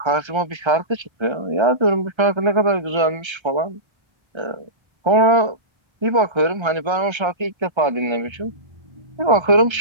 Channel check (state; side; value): late; left; 1.3 ms